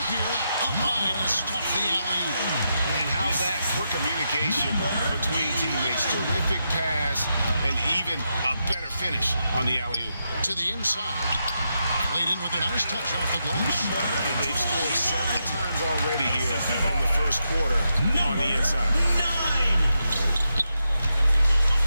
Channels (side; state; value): both; inverted; correlation -0.84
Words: here. Up high to stuff the alley-oop. And how's that for communication between teammates? Terrific pass and even a better finish on the alley-oop. To the inside. Played in with a nice touch off the glass. And they've scored several times already here in the first quarter on the inside.